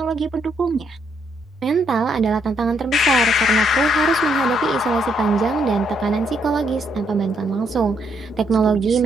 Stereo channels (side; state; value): both; normal; correlation 0.74